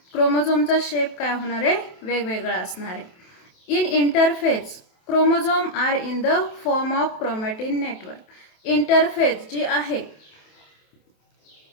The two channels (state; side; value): late; right; 28 ms